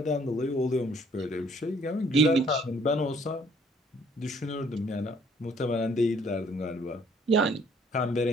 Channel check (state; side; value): normal; both; correlation 0.61